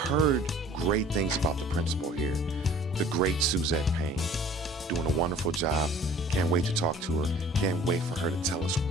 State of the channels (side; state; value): both; normal; correlation 0.50